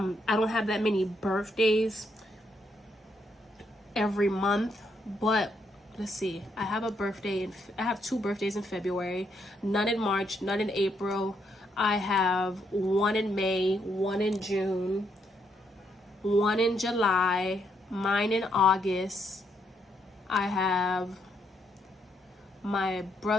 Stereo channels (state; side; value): normal; both; correlation 0.76